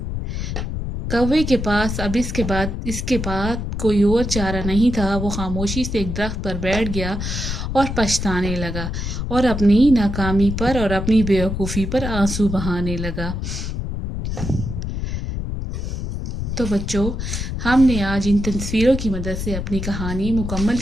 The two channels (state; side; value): noise; left; rumble, 4 dB below the sound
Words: کوے کے پاس اب اس کے بعد کوئی اور چارہ نہیں تھا۔ وہ خاموشی سے ایک درخت پر بیٹھ گیا اور پچھتانے لگا، اور اپنی ناکامی پر اور اپنی بیوقوفی پر آنسو بہانے لگا۔ تو بچوں، ہم نے آج ان تصویروں کی مدد سے اپنی کہانی مکمل